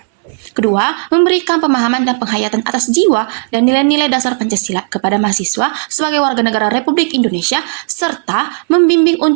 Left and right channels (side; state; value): left; silent; digital silence